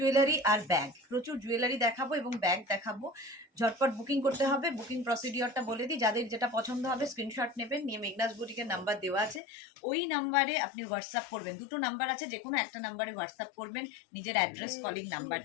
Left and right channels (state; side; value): drops out; right; at 9.4 s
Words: আর ব্যাগ, প্রচুর জুয়েলারি দেখাবো এবং ব্যাগ দেখাবো। ঝটপট বুকিং করতে হবে। বুকিং প্রসিডিওরটা বলে দিই, যাদের যেটা পছন্দ হবে স্ক্রিনশট নেবেন, নিয়ে মেঘনাস বুটিকের নাম্বার দেওয়া আছে, ওই নাম্বারে আপনি হোয়াটসঅ্যাপ করবেন। দুটো নাম্বার আছে, যে কোনো একটা নাম্বারে হোয়াটসঅ্যাপ করবেন নিজের অ্যাড্রেস, কলিং নাম্বার